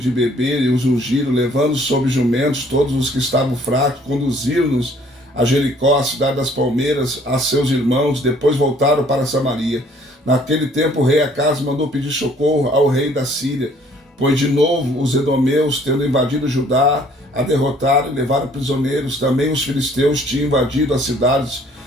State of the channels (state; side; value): normal; both; correlation 0.59